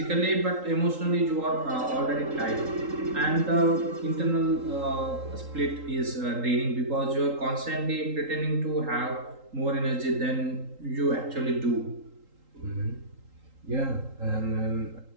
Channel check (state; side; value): late; left; 3.8 ms